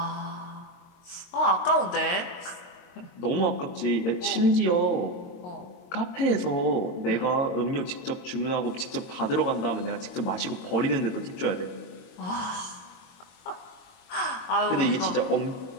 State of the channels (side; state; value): right; late; 22 ms